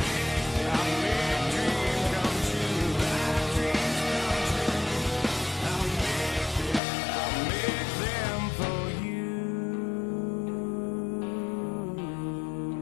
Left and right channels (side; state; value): right; drops out; at 6.8 s